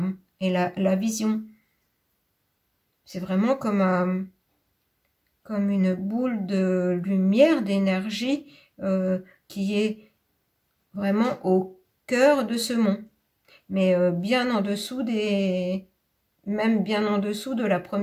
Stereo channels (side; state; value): both; identical; correlation 1.00